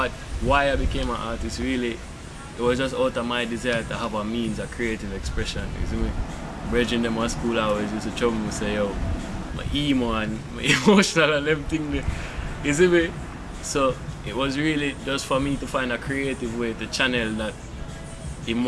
Why I became an artist, really, it was just out of my desire to have a means of creative expression, you see me? Bridging them at school hours used to trouble me, say, yo, my emo and my emotional and them thing, you see me? So it was really just for me to find a creative way to channel that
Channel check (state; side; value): identical; both; correlation 1.00